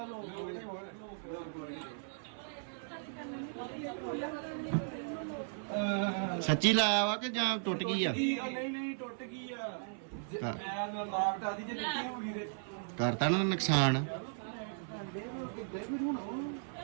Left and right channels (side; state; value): left; silent; 53 dB below the other